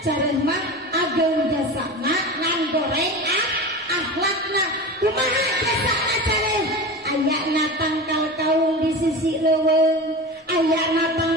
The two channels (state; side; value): normal; both; correlation 0.29